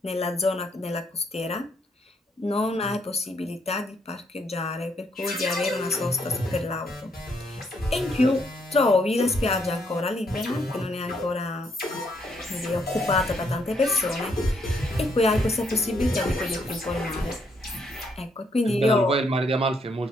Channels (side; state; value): both; normal; correlation 0.72